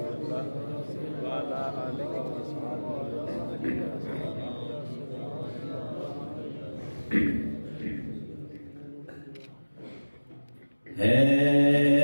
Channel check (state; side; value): inverted; both; correlation -1.00